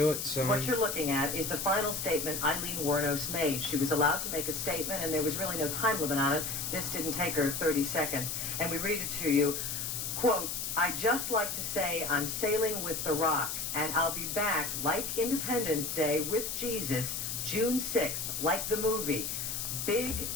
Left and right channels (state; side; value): noise; left; hiss, 3 dB below the sound